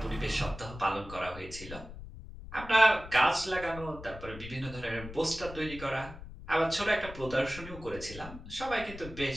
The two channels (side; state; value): left; noise; rumble, 13 dB below the sound